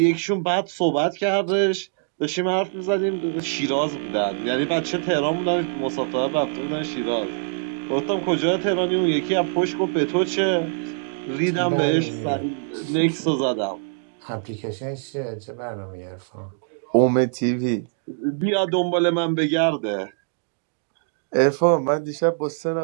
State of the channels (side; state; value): left; silent; digital silence